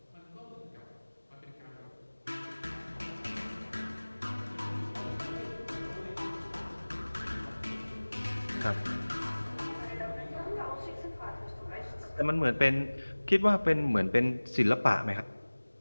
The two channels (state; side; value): inverted; both; correlation -1.00